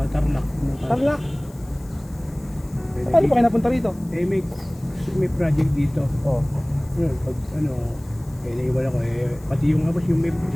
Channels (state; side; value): noise; left; hiss, 26 dB below the sound